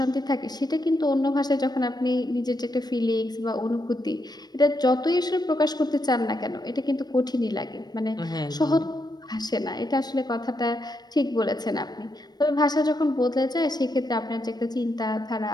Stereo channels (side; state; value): right; late; 0.19 ms